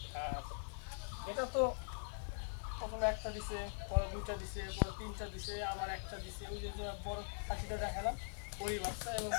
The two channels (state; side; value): silent; right; digital silence